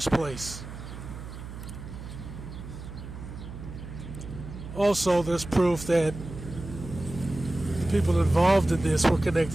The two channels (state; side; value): noise; right; hum, 11 dB below the sound